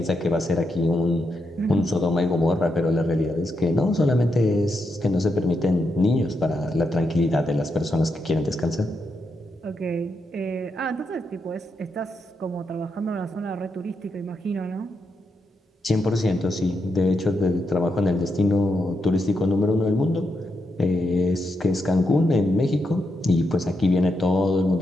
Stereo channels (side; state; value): both; normal; correlation 0.83